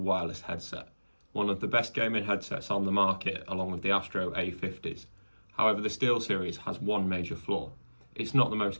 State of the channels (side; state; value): both; inverted; correlation -1.00